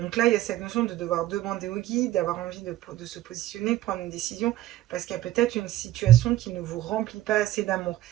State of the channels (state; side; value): quieter; left; 14.4 dB